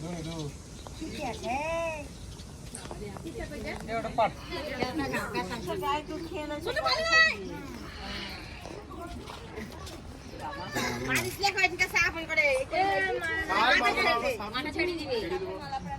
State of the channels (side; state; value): both; identical; correlation 1.00